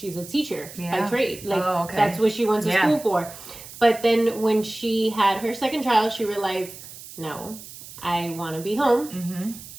a teacher by trade. Like, that's what she went to school for. But then when she had her second child, she realized, no, I want to be home.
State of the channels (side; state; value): right; noise; hiss, 15 dB below the sound